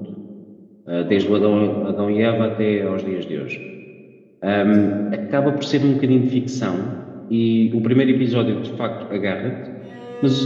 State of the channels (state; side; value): identical; both; correlation 1.00